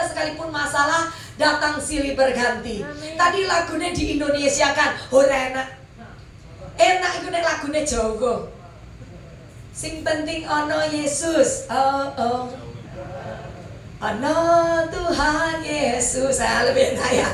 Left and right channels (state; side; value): identical; both; correlation 1.00